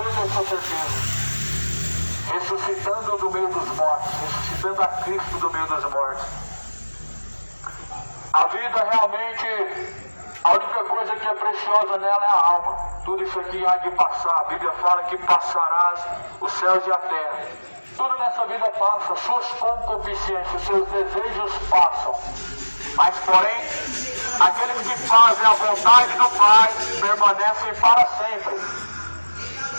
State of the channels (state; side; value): inverted; both; correlation -1.00